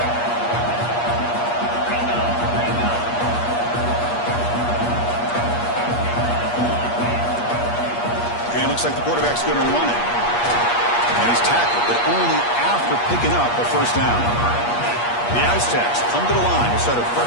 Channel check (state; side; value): late; right; 8.4 ms